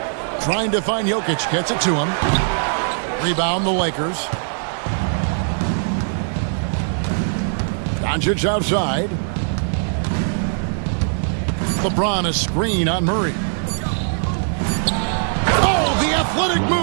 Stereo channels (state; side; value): silent; left; digital silence